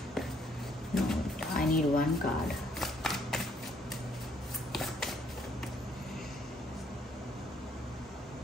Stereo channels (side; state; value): both; normal; correlation 0.68